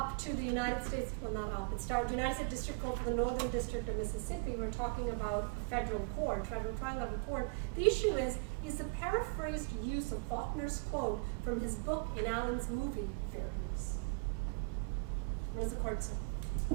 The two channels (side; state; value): left; quieter; 33.4 dB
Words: up to the United States, well not up, it's down to United States District Court for the Northern District of Mississippi. We're talking about a federal court, federal trial level court. The issue is the paraphrased use of Faulkner's quote from his book in Allen's movie fair use? What does the court say?